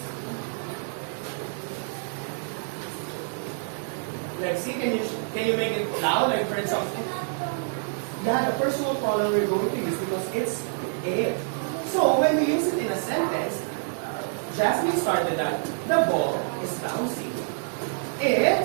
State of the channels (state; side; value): silent; left; digital silence